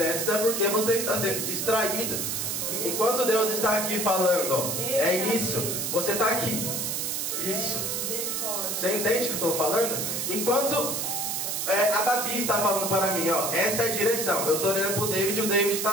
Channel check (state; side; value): noise; right; hiss, 1 dB below the sound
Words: é porque você está sendo distraído. Enquanto Deus está aqui falando, ó, é isso, você está aqui. Isso. Você entende o que eu estou falando? Enquanto a Babi está falando para mim, ó, essa é a direção. Eu estou olhando para o David e o David